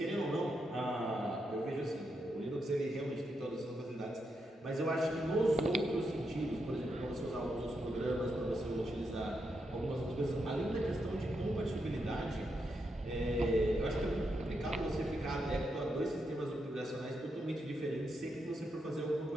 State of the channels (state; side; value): normal; both; correlation 0.83